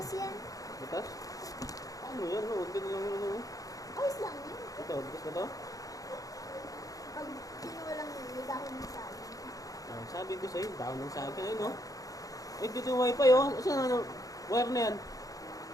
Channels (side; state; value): right; late; 0.17 ms